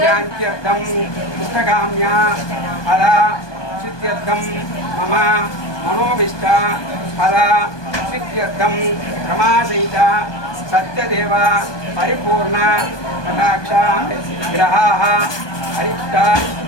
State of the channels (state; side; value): late; right; 1.2 ms